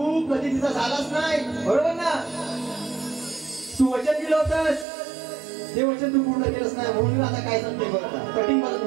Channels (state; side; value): drops out; left; at 4.9 s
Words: कधी तिचा झालाच नाही, बरोबर ना? तू वचन दिलं होतंस, ते वचन तू पूर्ण केलंच नाही. म्हणून आता काय सांगते बघा, कटिंग मला